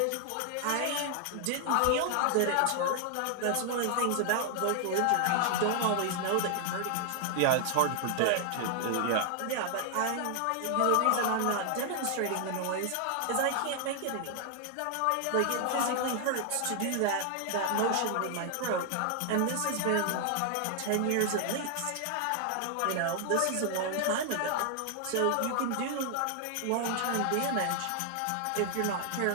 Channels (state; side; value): different; both; correlation 0.00